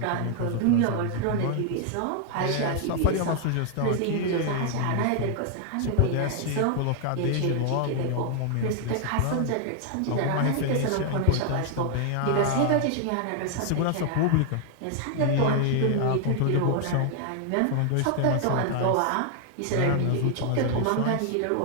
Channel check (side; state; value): both; different; correlation 0.00